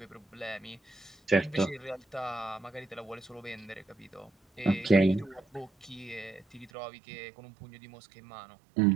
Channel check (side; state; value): left; drops out; at 6.7 s